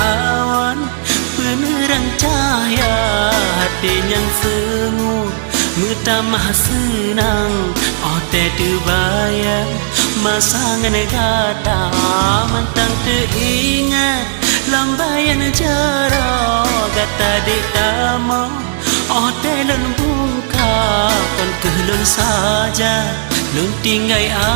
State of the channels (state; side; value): silent; left; digital silence